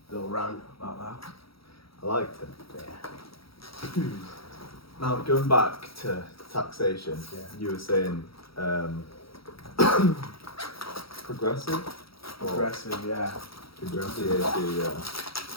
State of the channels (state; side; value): late; right; 0.75 ms